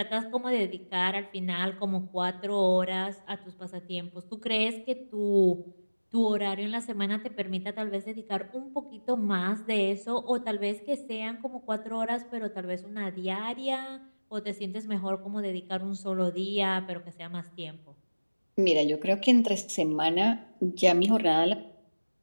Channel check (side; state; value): both; inverted; correlation -1.00